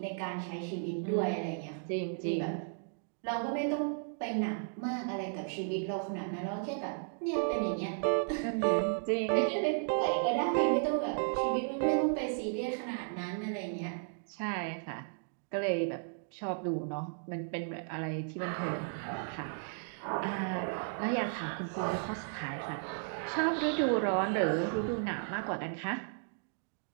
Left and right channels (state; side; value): silent; left; digital silence